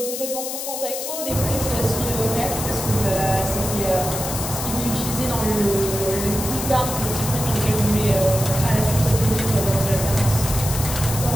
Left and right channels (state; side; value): noise; left; hiss, 5 dB below the sound